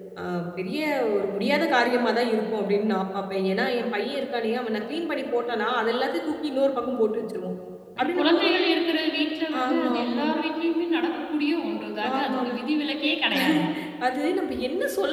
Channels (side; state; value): both; identical; correlation 1.00